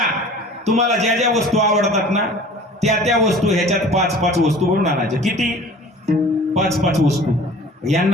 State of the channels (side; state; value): both; normal; correlation 0.44